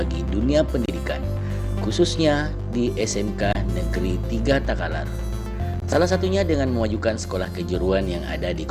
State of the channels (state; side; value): identical; both; correlation 1.00